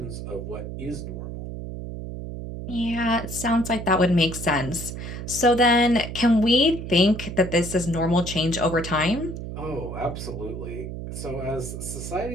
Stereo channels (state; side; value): noise; right; hum, 8 dB below the sound